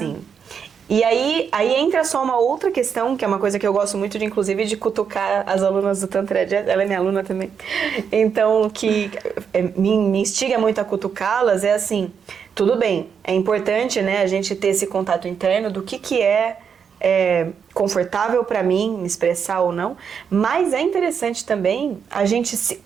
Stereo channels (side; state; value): left; quieter; 6.9 dB